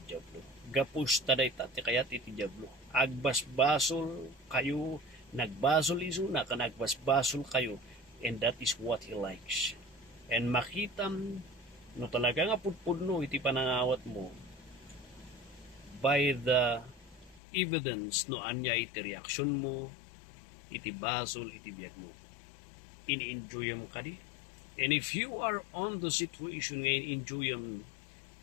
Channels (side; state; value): right; drops out; at 17.4 s